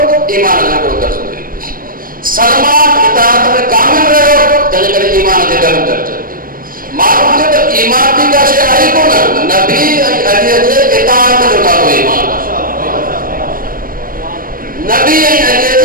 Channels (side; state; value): left; late; 0.41 ms